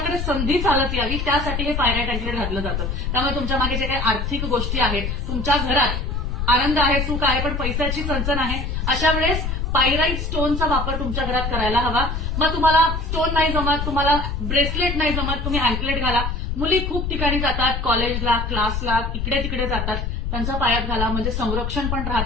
संधी चालत यावी, त्यासाठी हे पायराइट अँकलेट घातलं जातं. त्यामुळे तुमच्या मागे जे काही आर्थिक गोष्टी आहेत, तुमच्या घरात आनंद आहे, सुख आहे, पण पैशाची चणचण आहे, अशा वेळेस पायराइट स्टोनचा वापर तुमच्या घरात करायला हवा. मग तुम्हाला स्टोन नाही जमत, तुम्हाला ब्रेसलेट नाही जमत, तुम्ही अँकलेट घाला. मुली खूप ठिकाणी जातात, कॉलेजला, क्लासला, इकडे तिकडे जातात, त्यांच्या पायात घाला, म्हणजे संरक्षण पण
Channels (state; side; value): noise; left; rumble, 2 dB below the sound